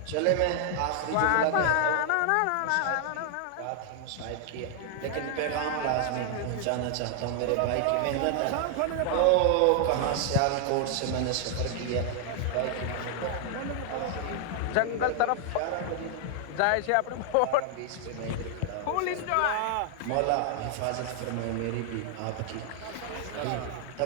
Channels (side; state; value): both; different; correlation 0.00